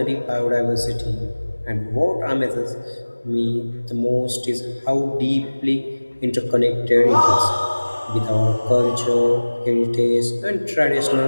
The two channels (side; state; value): both; inverted; correlation -1.00